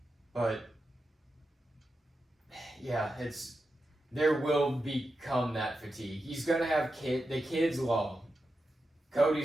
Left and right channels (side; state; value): both; normal; correlation 0.89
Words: But yeah, there will become that fatigue. He's gonna have the kids love him.